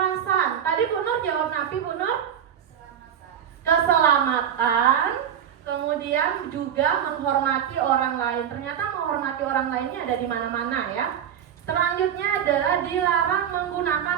Tadi Bu Nur jawab napi Bu Nur? Keselamatan. Kemudian juga menghormati orang lain. Ternyata menghormati orang lainnya ada di mana-mana ya. Selanjutnya adalah dilarang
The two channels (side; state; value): left; quieter; 9.1 dB